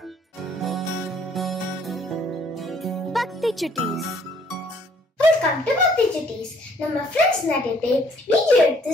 பக்தி சுட்டீஸ். வெல்கம் டு பக்தி சுட்டீஸ். நம்ம ஃப்ரெண்ட்ஸ் நிறைய பேர் வீடியோ எடுத்து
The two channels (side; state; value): both; normal; correlation 0.62